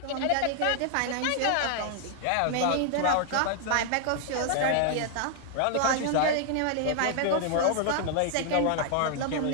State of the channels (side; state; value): both; different; correlation 0.00